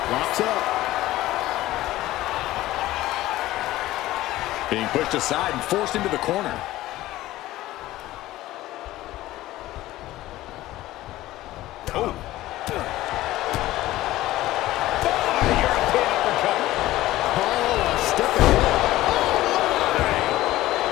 Locks up. Being pushed aside and forced into the corner. Oh. European uppercut. Oh, a step ahead.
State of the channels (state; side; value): quieter; right; 16.1 dB